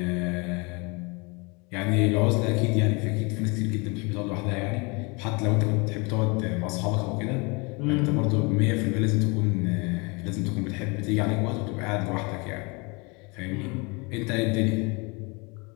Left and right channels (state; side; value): quieter; right; 29.2 dB